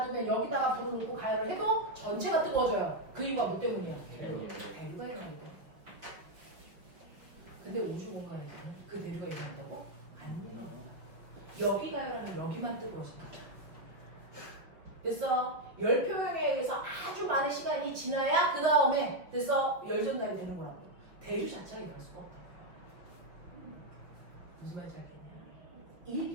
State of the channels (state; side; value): late; left; 5.6 ms